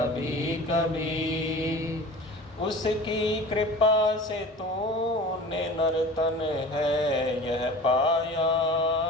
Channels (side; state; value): both; normal; correlation 0.39